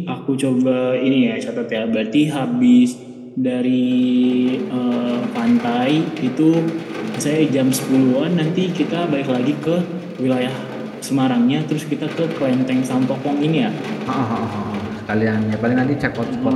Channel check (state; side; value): identical; both; correlation 1.00